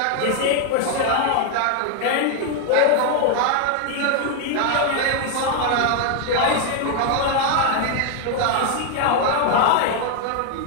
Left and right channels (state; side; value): different; both; correlation 0.00